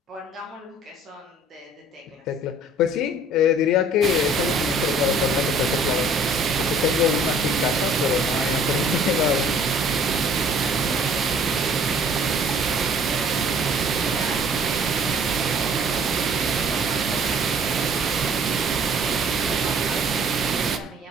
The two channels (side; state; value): both; normal; correlation 0.55